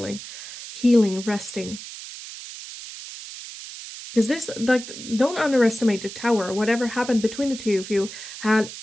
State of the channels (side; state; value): right; noise; hiss, 12 dB below the sound